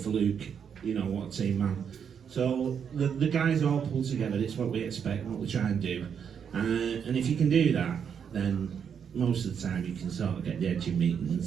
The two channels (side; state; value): left; quieter; 7.5 dB